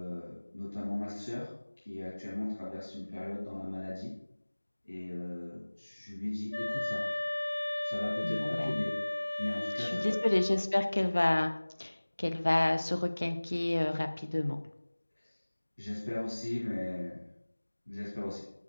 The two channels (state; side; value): inverted; both; correlation -1.00